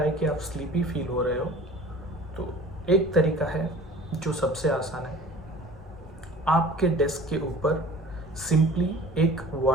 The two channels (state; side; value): normal; both; correlation 0.44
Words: है कि आप स्लीपी फील हो रहे हो तो एक तरीका है जो सबसे आसान है, आपके डेस्क के ऊपर सिंपली एक